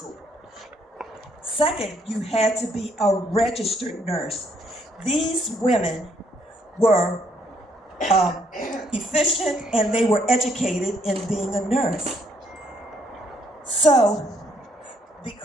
Second, you had to be a registered nurse. These women were efficient, and they were educated in being a nurse. So,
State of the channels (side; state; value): both; normal; correlation 0.69